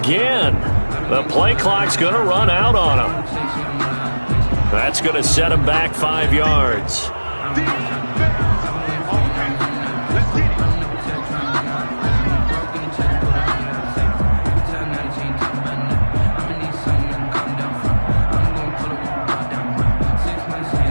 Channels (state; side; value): inverted; both; correlation -1.00